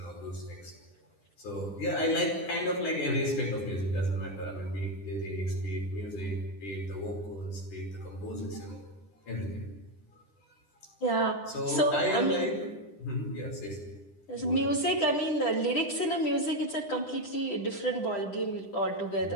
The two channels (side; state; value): right; late; 10 ms